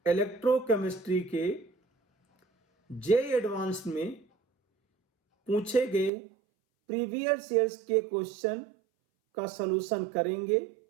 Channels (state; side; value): drops out; left; at 6.1 s